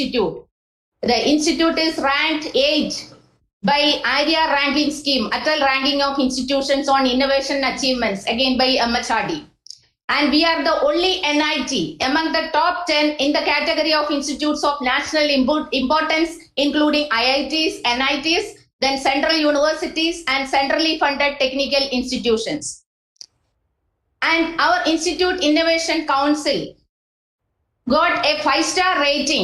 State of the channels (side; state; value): both; identical; correlation 1.00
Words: institute is ranked 8 by ARIA ranking scheme, Atal ranking of institutions on innovation achievements, again by MHRD. And we are the only NIT among the top 10 in the category of institutes of national importance, including IITs, NITs, then central universities and centrally funded technical institutions. And our Institute Innovation Council got a 5-star